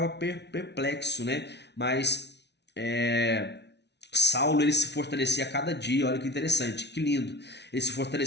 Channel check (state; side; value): late; right; 0.50 ms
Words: perplexo, né? Mas Saulo ele se fortalecia a cada dia. Olha que interessante, que lindo. Ele se